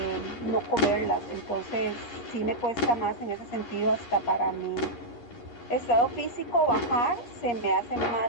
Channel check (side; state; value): right; late; 9.9 ms